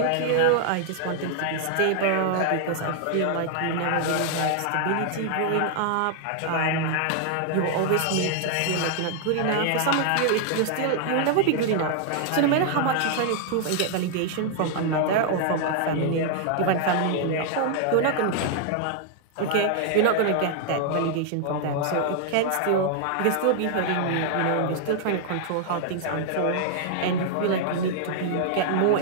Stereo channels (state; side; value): different; both; correlation -0.01